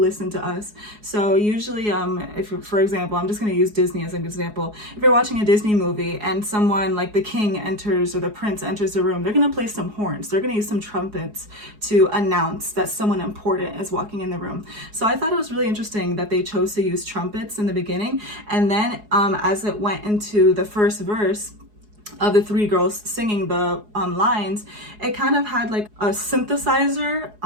to us. So usually if for example, I'm just going to use Disney as an example. If you're watching a Disney movie and someone like the king enters or the prince enters the room, they're going to play some horns, they're going to use some trumpets to announce that someone important is walking in the room. So I thought it was really interesting that they chose to use trumpets in the beginning, and then as it went into the first verse of the three girls singing the lines, it kind of had like a synthesizer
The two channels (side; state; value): left; late; 4.7 ms